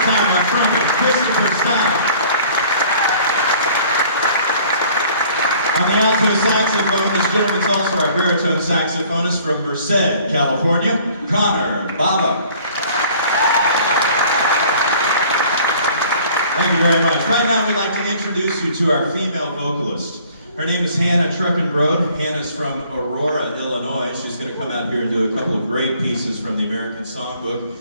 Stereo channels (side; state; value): both; inverted; correlation -0.53